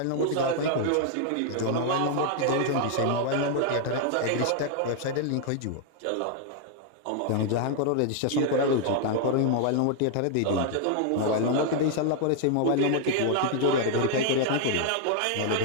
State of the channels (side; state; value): both; different; correlation 0.00